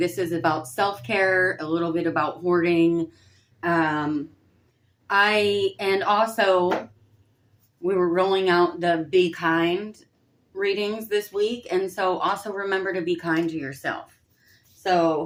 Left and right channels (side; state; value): both; identical; correlation 1.00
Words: is about self care, a little bit about hoarding. Um, and also, we were rolling out the Be Kind readings this week. And so, also remember to be kind to yourself.